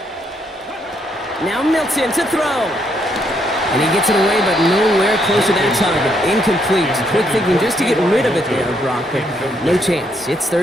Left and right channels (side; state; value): both; normal; correlation 0.74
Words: Now Milton to throw. And he gets it away, but nowhere close to that target. Incomplete. Quick thinking just to get rid of it there, Brock, but no chance. It's